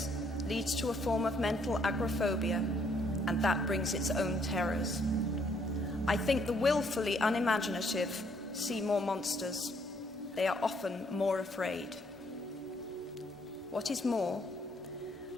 leads to a form of mental agoraphobia, and that brings its own terrors. I think the willfully unimaginative see more monsters. They are often more afraid. What is more,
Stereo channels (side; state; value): both; normal; correlation 0.68